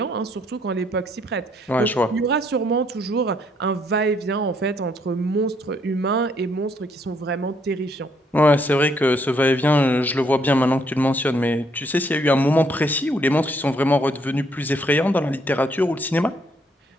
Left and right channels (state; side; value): normal; both; correlation 0.70